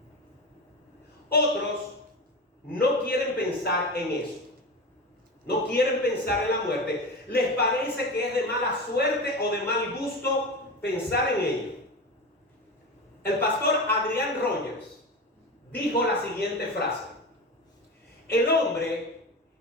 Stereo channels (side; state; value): both; normal; correlation 0.25